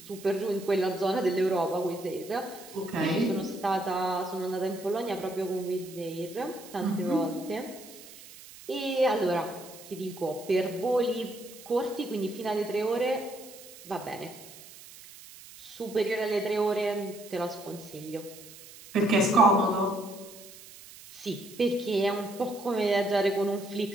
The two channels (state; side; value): noise; right; hiss, 18 dB below the sound